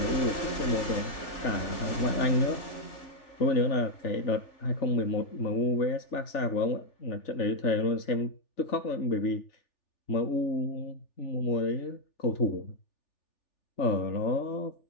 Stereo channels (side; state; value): right; late; 3.4 ms